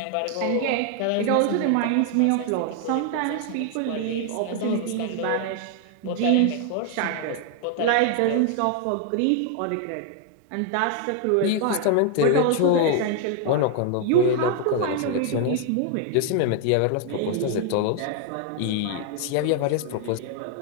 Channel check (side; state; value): both; different; correlation 0.00